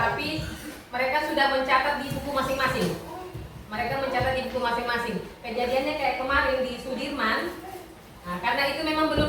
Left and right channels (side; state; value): both; identical; correlation 1.00